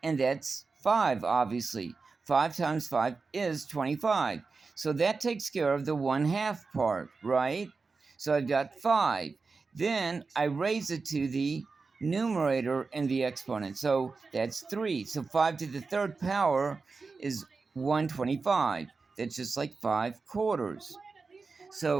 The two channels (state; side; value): quieter; left; 4.4 dB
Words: And that's 5, obviously. 5 times 5 is 25. So that takes care of the 1/2 part, right? So I've got 5. Then I raise it to the numerator in the exponent. So that's 3. So 5 to the 3rd power is 125. That's just like 5/4.